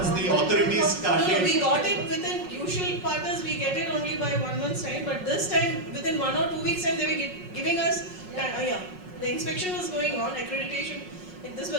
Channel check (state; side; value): late; left; 5.4 ms